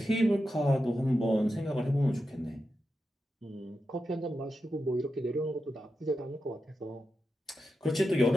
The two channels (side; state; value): both; normal; correlation 0.89